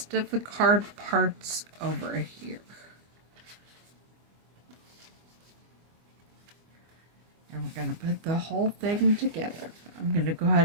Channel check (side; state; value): left; late; 24 ms